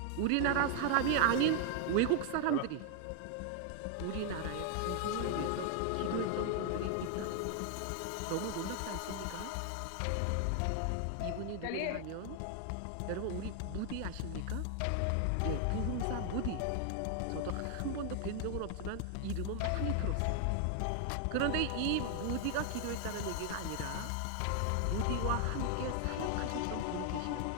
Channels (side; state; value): both; different; correlation 0.00